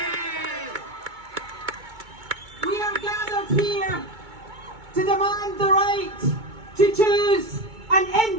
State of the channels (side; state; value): left; late; 2.2 ms